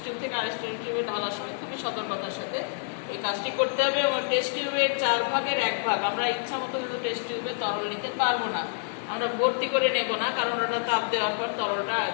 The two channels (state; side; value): silent; right; 60 dB below the other